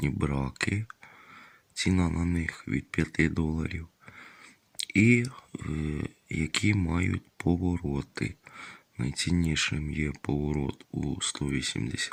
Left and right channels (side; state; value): both; identical; correlation 1.00